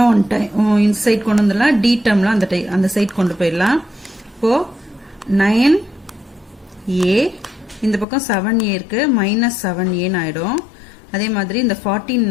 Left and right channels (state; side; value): drops out; right; at 8.1 s